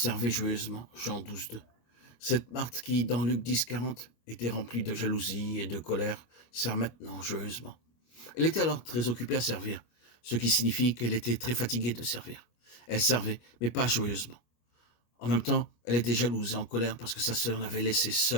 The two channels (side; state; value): right; late; 25 ms